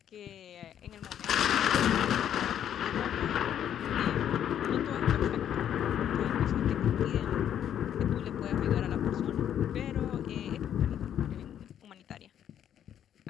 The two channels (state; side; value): quieter; right; 9.9 dB